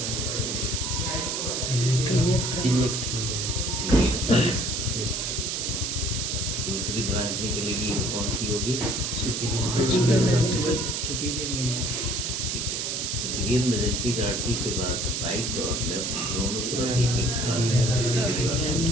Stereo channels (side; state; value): right; noise; hiss, 1 dB below the sound